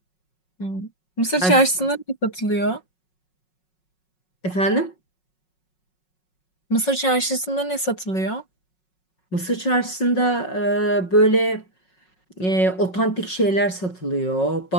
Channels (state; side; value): late; right; 5.4 ms